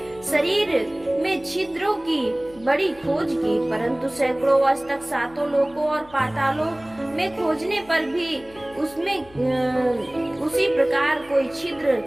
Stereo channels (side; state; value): left; noise; hum, 24 dB below the sound